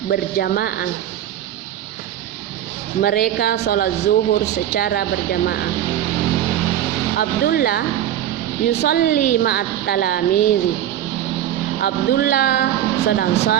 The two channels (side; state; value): left; quieter; 11.5 dB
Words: berjamaah. Mereka sholat zuhur secara berjamaah. Abdullah yusalli ma'at talamizi. Abdullah sedang